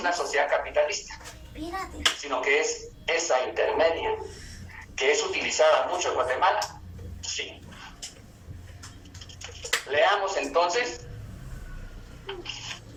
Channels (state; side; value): identical; both; correlation 1.00